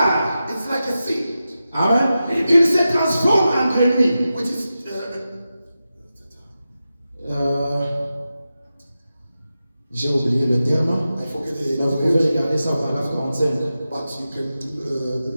It's like a seed. Amen. Il se transforme en grenouille. Which is J'ai oublié le terme. I forget Mais vous pouvez regarder ça au paragraphe 45. but you can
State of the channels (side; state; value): both; inverted; correlation -0.92